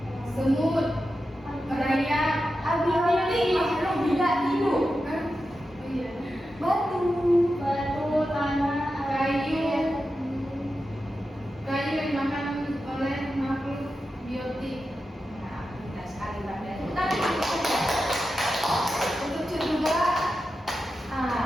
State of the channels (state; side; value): normal; both; correlation 0.90